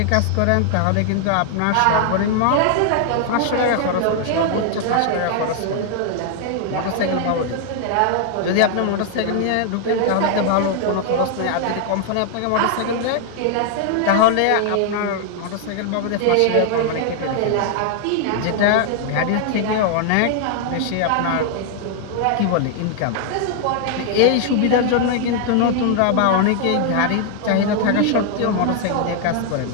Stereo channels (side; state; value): both; different; correlation 0.00